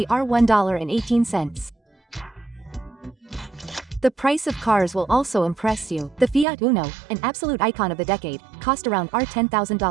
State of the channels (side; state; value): left; drops out; at 6.5 s